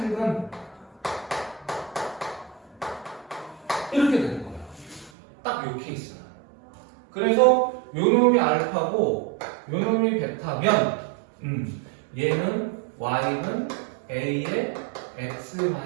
이렇게 되는 거예요. 딱 요 케이스는. 그래서 요놈이 알파고 요놈이 베타면 얘는 y는 a의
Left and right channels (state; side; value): drops out; left; at 5.1 s